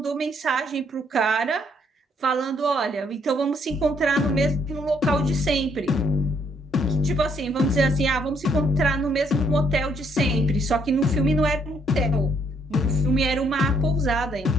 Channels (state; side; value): normal; both; correlation 0.68